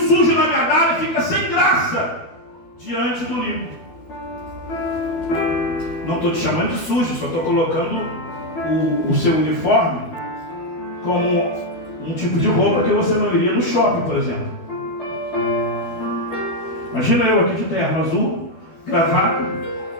na verdade, fica sem graça diante do limpo. Não estou te chamando de sujo, só estou colocando o seu uniforme como um tipo de roupa que você não iria no shopping, por exemplo. Imagina eu aqui de terno azul, gravata,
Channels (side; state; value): right; late; 12 ms